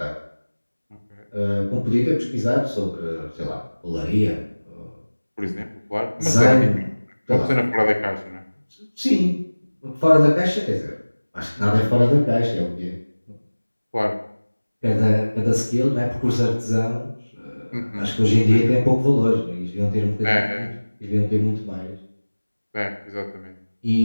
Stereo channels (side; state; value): both; inverted; correlation -1.00